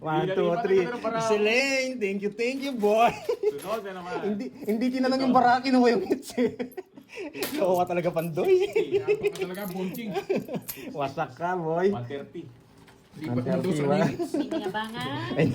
2, 3. Miss Elaine, thank you, boy. Sunod na naman. hindi tinanong yung bara, kinuha yung hits eh. Oo ka talaga, Pandoy. Kaya pa talaga, bonking. Wasak ka, boy. 130. Lipat mo daw sa Ang minutes. Hindi nga ba nga? Ay,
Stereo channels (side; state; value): both; identical; correlation 1.00